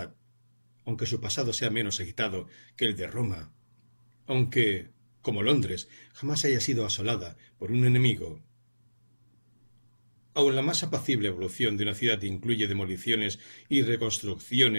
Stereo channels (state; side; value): inverted; both; correlation -1.00